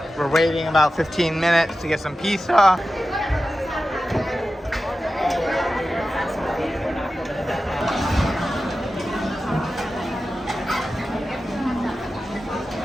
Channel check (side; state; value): both; normal; correlation 0.93